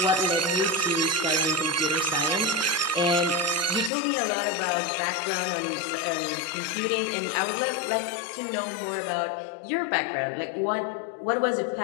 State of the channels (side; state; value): right; drops out; at 3.9 s